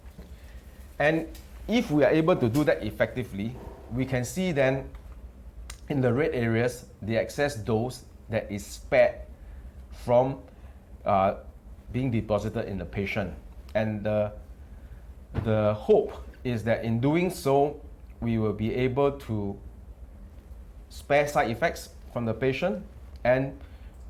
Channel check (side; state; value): both; identical; correlation 1.00